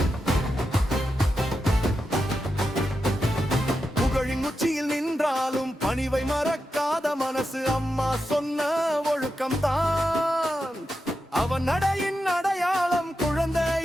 புகழின் உச்சியில் நின்றாலும் பணிவை மறக்காத மனசு அம்மா சொன்ன ஒழுக்கம்தான் அவன் நடையின் அடையாளம்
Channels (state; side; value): normal; both; correlation 0.88